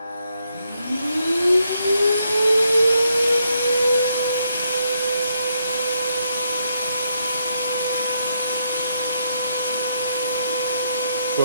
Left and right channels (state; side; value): inverted; both; correlation -0.77